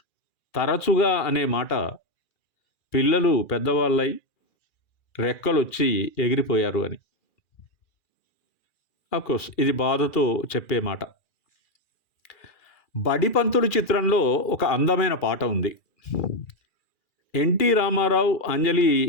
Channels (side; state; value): right; late; 2.4 ms